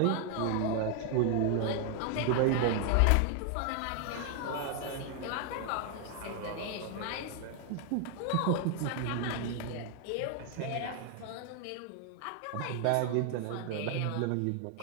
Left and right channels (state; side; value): different; both; correlation 0.00